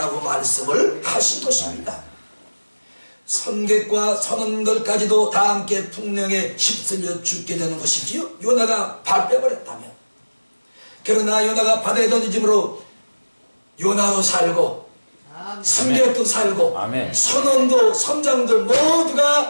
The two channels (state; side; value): inverted; both; correlation -1.00